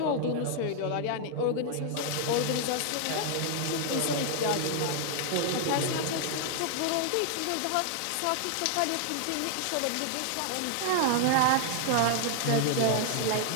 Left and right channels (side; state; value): both; different; correlation 0.00